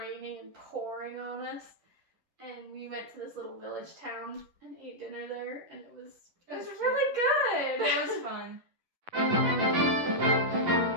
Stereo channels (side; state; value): left; late; 11 ms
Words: and pouring on us. And we went to this little village town and ate dinner there, and it was really good. It was fun.